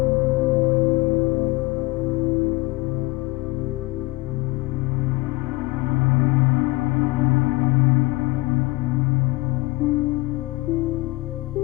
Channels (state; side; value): quieter; right; 22.3 dB